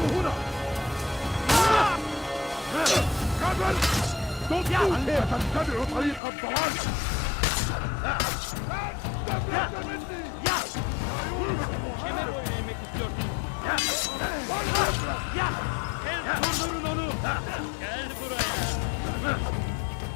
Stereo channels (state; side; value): drops out; right; at 6.2 s